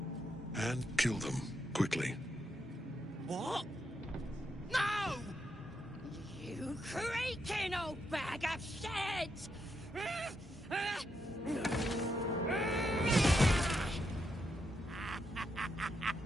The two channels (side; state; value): both; normal; correlation 0.81